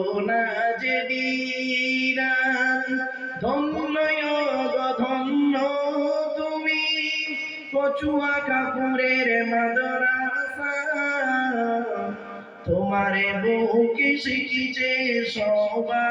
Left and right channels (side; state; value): both; identical; correlation 1.00